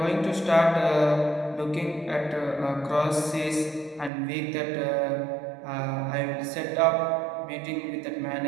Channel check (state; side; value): drops out; left; at 4.1 s